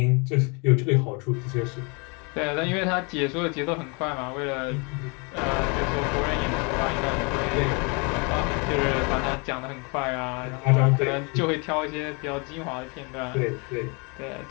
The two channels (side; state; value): right; quieter; 32.3 dB